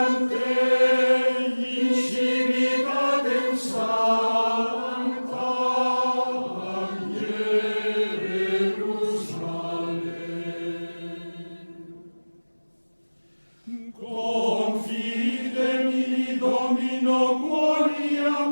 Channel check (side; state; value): both; inverted; correlation -1.00